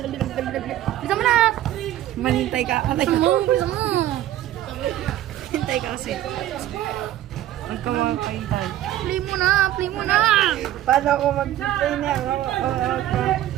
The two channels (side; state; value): left; quieter; 13.2 dB